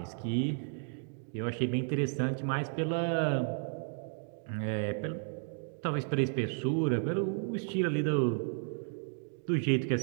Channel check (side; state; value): left; silent; 56 dB below the other